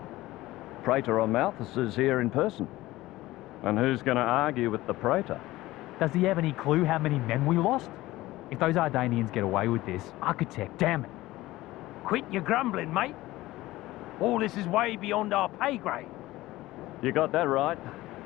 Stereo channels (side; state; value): right; quieter; 17.7 dB